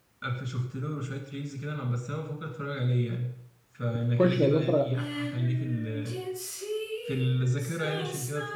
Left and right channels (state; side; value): identical; both; correlation 1.00